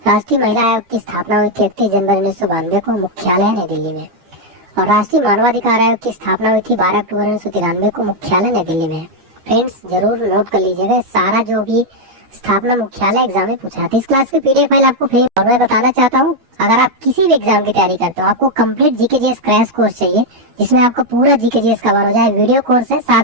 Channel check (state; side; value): late; left; 12 ms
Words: राष्ट्रीय महिला आयोग की स्थापना हुई थी 31 जनवरी 1992 को, मुख्यालय नई दिल्ली में। और राष्ट्रीय मानवाधिकार आयोग की स्थापना हुई थी 12 अक्टूबर 1993 को, मुख्यालय नई दिल्ली में। फ्रेंड्स जरूर नोट कर लीजिएगा, सारा जो भी स्थापना मुख्यालय एग्जाम में पूछा था। इस क्लास की पीडीएफ फाइल आपको फ्री। और मैं बताना चाहता हूँ, अगर आप किसी भी एग्जाम की तैयारी करते हो, आपको कंप्लीट जीकेजीएस क्रैश कोर्स चाहिए जिसमें आपको पूरा जीकेजीएस कवर हो जाए। वीडियो कोर्स है,